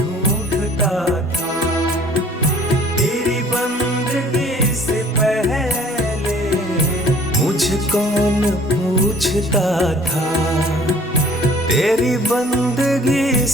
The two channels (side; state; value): both; normal; correlation 0.54